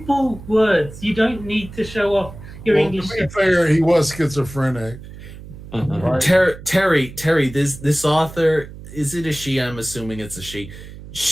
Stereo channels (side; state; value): right; noise; hum, 15 dB below the sound